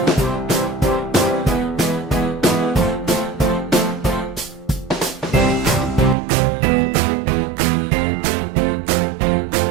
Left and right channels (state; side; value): drops out; left; at 6.2 s